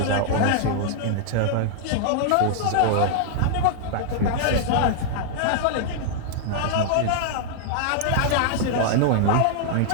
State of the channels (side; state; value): both; different; correlation -0.01